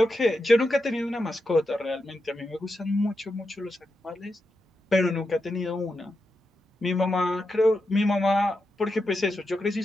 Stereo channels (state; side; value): normal; both; correlation 0.87